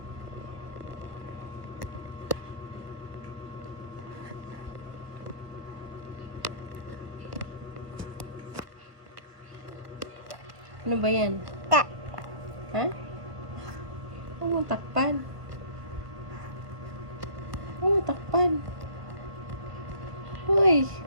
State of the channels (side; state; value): left; late; 1.3 ms